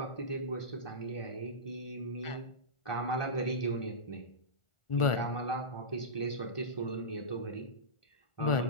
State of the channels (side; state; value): right; late; 1.4 ms